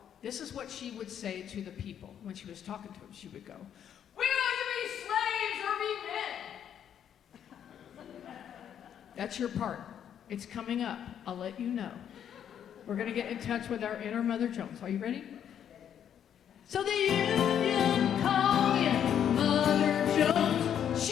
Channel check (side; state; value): right; quieter; 9.2 dB